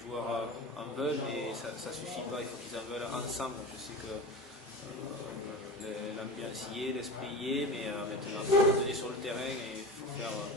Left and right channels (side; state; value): both; normal; correlation 0.29